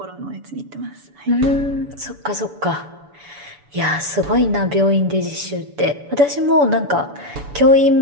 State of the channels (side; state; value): left; late; 6.9 ms